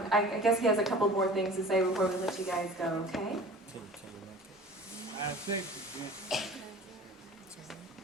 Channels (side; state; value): both; normal; correlation 0.41